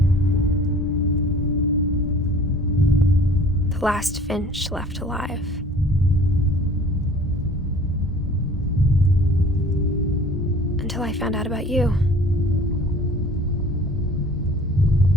The last Finch left alive. Until I found out about you.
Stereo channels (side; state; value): both; normal; correlation 0.49